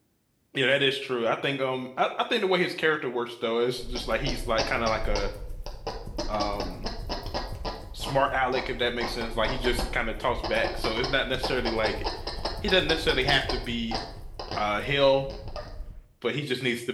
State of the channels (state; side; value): identical; both; correlation 1.00